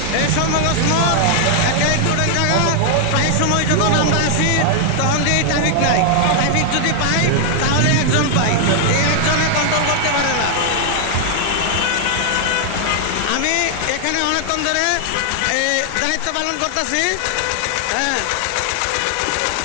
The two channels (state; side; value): different; both; correlation 0.00